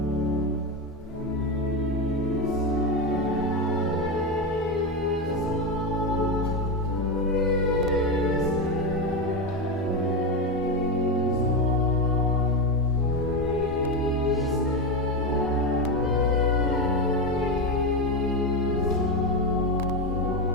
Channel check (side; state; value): both; normal; correlation 0.14